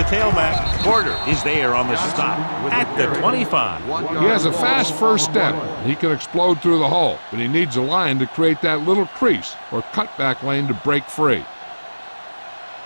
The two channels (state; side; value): inverted; both; correlation -1.00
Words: tailback. Porter is there on the stop at the 25. He has a fast first step. He can explode through the hole, but he needs a line to create that little crease or cutback lane to break free.